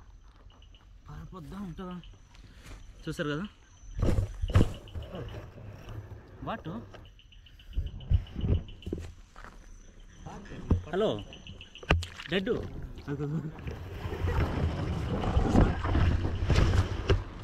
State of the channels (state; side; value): identical; both; correlation 1.00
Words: పారిపోద్దాం ఉంటుందా చూసారు కదా. వాటు హలో డెడ్